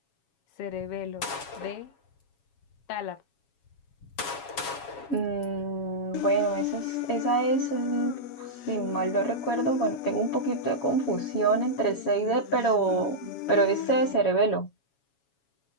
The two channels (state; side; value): late; right; 7.2 ms